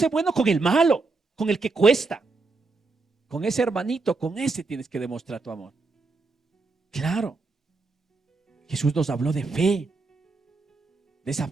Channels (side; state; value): left; quieter; 3.8 dB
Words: bueno con el malo, con el que cuesta. Con ese hermanito, con ese tienes que demostrar tu amor. Claro. Jesús nos habló de fe. De esa